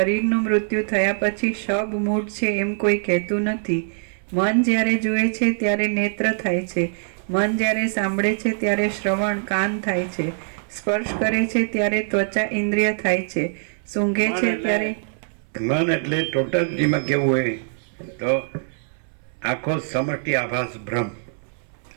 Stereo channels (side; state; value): left; silent; 62 dB below the other